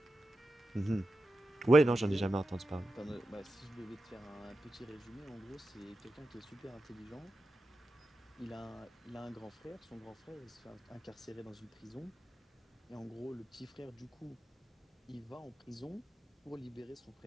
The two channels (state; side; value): normal; both; correlation 0.91